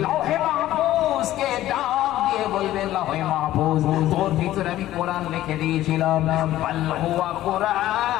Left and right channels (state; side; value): quieter; right; 14.2 dB